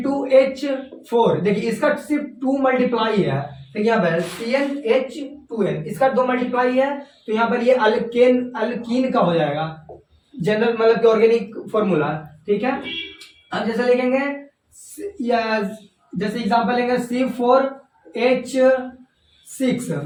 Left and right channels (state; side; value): identical; both; correlation 1.00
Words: देखिए इसका सिर्फ 2 मल्टीप्लाई है, तो यहाँ पर CnH2n, इसका 2 मल्टीप्लाई है, तो यहाँ पर ये अल्कीन का हो जाएगा जनरल मतलब कि ऑर्गेनिक फॉर्मूला, ठीक है। अब जैसे लिखेंगे या जैसे एग्जांपल लेंगे C4H6,